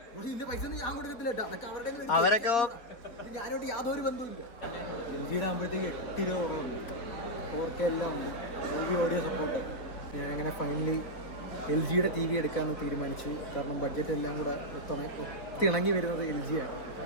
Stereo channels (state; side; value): late; right; 4.3 ms